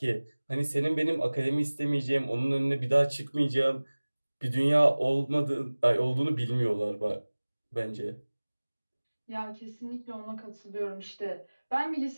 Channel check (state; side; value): inverted; both; correlation -1.00